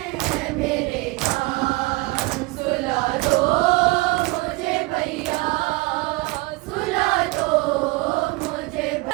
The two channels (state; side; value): quieter; left; 22.9 dB